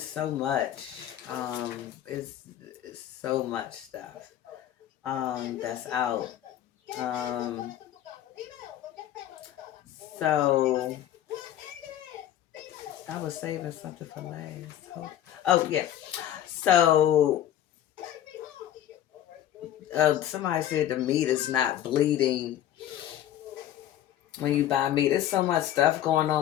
so much. It's so much stuff that's out. So I was saving something for last. Oh yeah. So somebody said the meat is not bleeding when you buy meat. There's so much stuff going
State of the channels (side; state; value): right; quieter; 11.8 dB